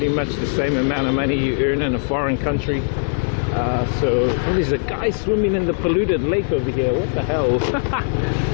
much the same amount of money you earn in a foreign country. Oh, there's a guy swimming in the polluted lake over here. What the hell?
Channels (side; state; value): right; silent; 64 dB below the other